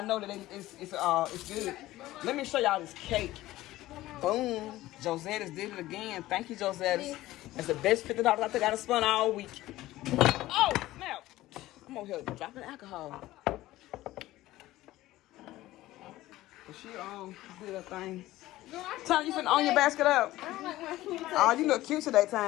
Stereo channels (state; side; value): quieter; right; 16.4 dB